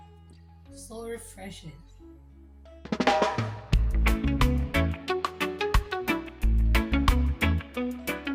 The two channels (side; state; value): both; identical; correlation 1.00